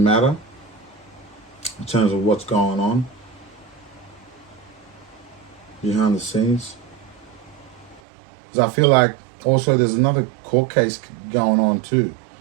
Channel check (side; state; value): left; drops out; at 8.0 s